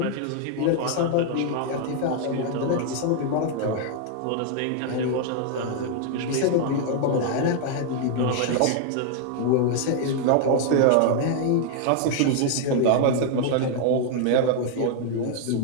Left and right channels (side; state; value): both; different; correlation 0.00